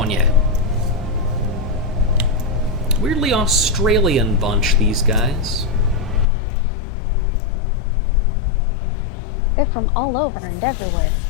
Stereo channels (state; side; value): drops out; right; at 6.2 s